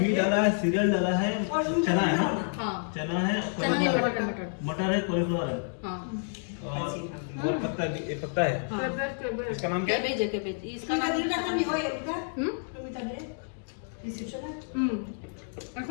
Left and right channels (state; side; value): silent; right; digital silence